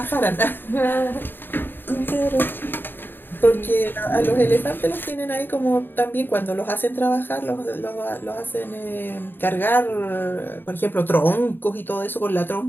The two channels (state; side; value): late; right; 0.096 ms